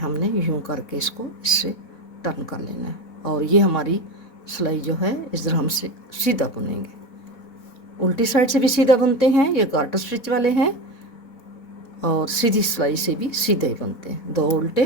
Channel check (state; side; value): late; right; 4.1 ms